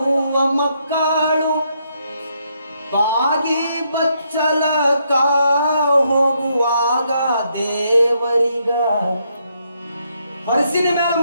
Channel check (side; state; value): both; inverted; correlation -0.75